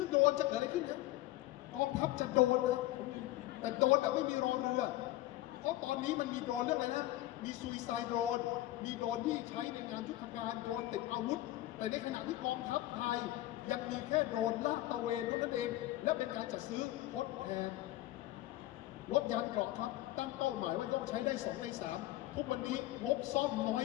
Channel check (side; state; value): right; quieter; 16.2 dB